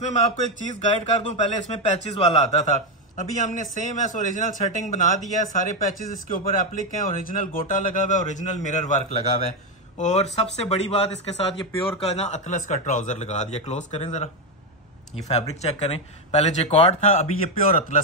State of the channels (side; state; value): both; normal; correlation 0.07